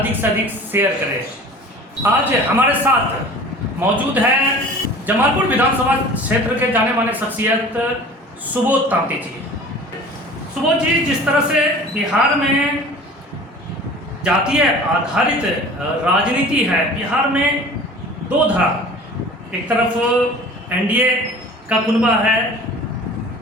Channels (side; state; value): both; normal; correlation 0.43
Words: से अधिक शेयर करें। आज हमारे साथ मौजूद है जमालपुर विधानसभा क्षेत्र के जाने माने शख्सियत सुबोध तांती जी। सुबोध जी, जिस तरह से बिहार में जातीय आधारित राजनीति है, बिहार में दो धारा, एक तरफ एनडीए का कुनबा है